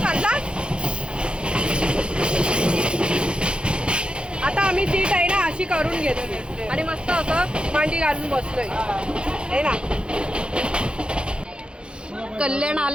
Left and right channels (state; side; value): late; left; 0.054 ms